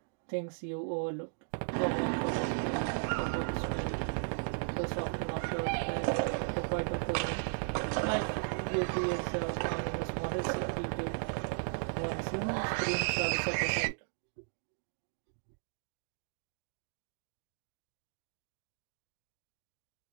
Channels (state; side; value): silent; left; digital silence